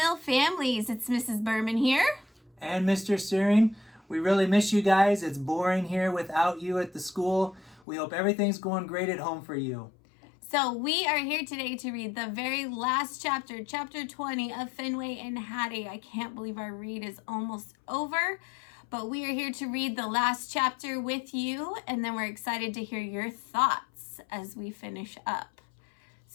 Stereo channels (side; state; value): right; drops out; at 7.8 s